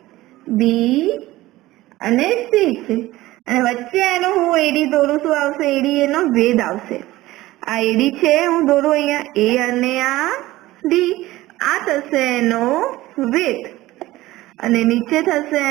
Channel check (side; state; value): left; quieter; 17.4 dB